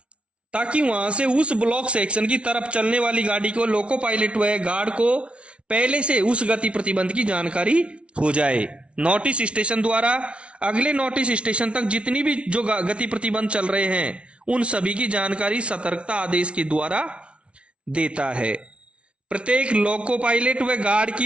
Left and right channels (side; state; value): left; late; 0.060 ms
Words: ताकि वहां से उस ब्लॉक सेक्शन की तरफ चलने वाली गाड़ी को लोको पायलट व गार्ड को पहले से उस गति प्रतिबंध की जानकारी हो जाए। नोटिस स्टेशन द्वारा अगले नोटिस स्टेशन तक जितनी भी जो गति प्रतिबंध चल रहे हैं उन सभी की जानकारी सतर्कता आदेश के द्वारा देता है। प्रत्येक लोको पायलट व गार्ड